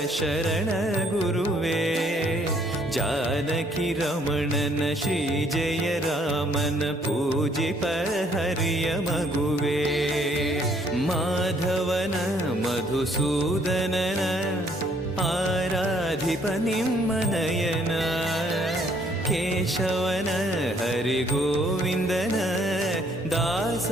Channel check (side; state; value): both; normal; correlation 0.65